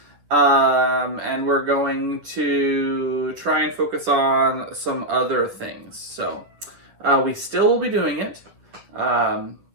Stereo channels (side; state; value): left; late; 10 ms